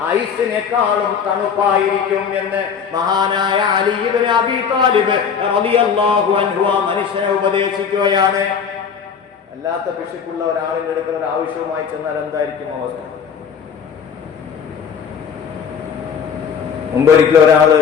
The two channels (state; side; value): quieter; right; 6.8 dB